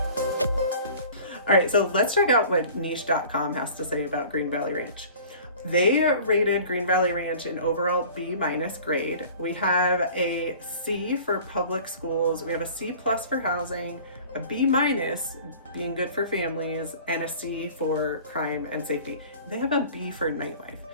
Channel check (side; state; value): both; inverted; correlation -0.45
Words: All right, so let's check out what niche.com has to say about Green Valley Ranch. They rated Green Valley Ranch an overall B- grade. We have a C for public schools. We have a C+ for housing, a B- being good for families, and a C for crime and safety. They have a B for nightlife.